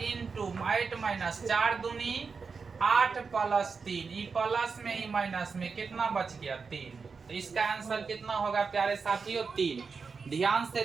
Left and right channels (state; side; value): quieter; left; 5.1 dB